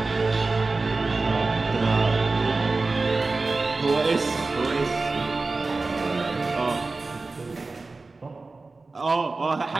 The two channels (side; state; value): left; quieter; 3.6 dB